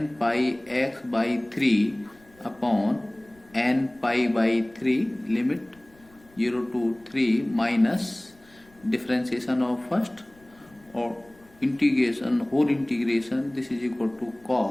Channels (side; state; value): left; noise; rumble, 29 dB below the sound